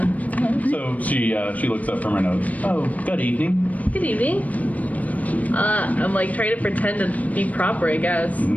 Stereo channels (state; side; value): late; right; 0.072 ms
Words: So she looks up from her notes. Oh, good evening. Good evening. I'm like trying to pretend to be proper, I guess.